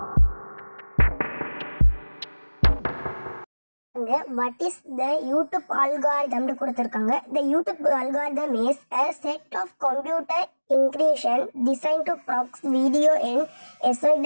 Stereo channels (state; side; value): inverted; both; correlation -1.00